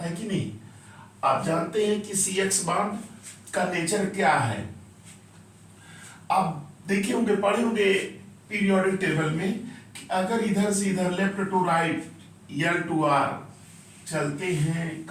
कि नहीं। आप जानते हैं कि सी एक्स बॉन्ड का नेचर क्या है। आप देखे होंगे, पढ़े होंगे पीरियोडिक टेबल में कि अगर इधर से इधर left to right L to R चलते हैं,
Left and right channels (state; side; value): identical; both; correlation 1.00